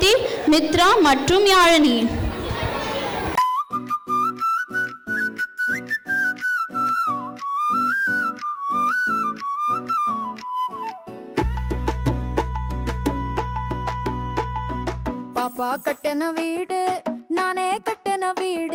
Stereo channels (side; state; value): both; identical; correlation 1.00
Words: மித்ரா மற்றும் யாழினி. பாப்பா கட்டின வீடு, நானே கட்டின